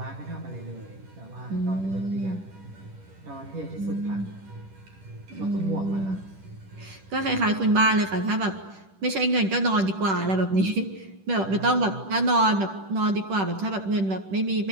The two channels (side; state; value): left; late; 10 ms